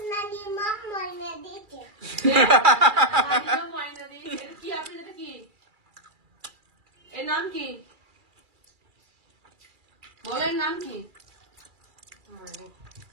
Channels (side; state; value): left; late; 2.3 ms